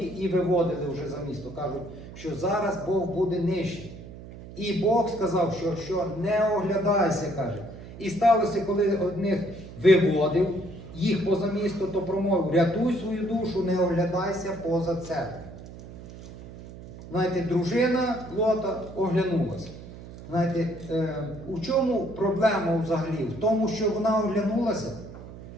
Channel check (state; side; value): noise; right; hum, 15 dB below the sound